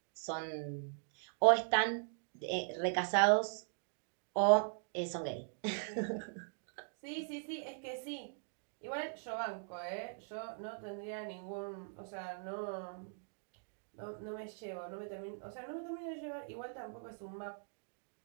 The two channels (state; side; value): silent; left; digital silence